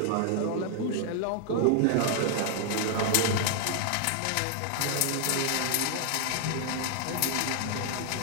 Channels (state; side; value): different; both; correlation 0.00